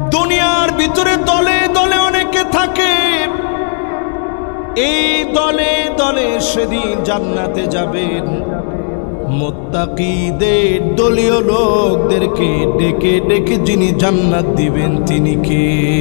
দুনিয়ার ভিতরে দলে দলে অনেকে থাকে, এই দলে দলে সেদিন জান্নাতে যাবেন। মুত্তাকিদের দলীয় লোকদেরকে ডেকে ডেকে যিনি জান্নাত দিবেন তিনি কে?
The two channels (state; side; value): silent; right; 68 dB below the other